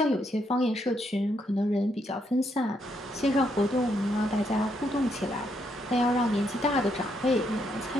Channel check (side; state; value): both; normal; correlation 0.76